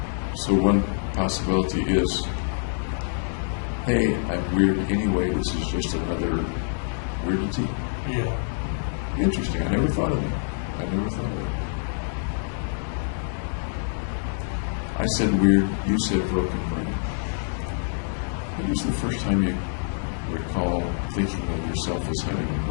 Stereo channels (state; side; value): silent; right; digital silence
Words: So one possibility is, hey, I'm weird anyway, this is just another weirdity. Yeah. Interesting. I never thought of it. I said weird, you said broken brain. When was the first time you recall thinking of yourself as having a